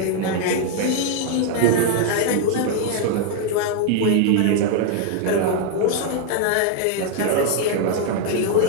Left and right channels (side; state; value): both; different; correlation 0.00